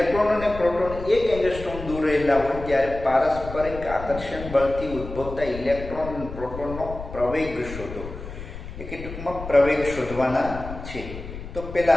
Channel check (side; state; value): left; noise; rumble, 11 dB below the sound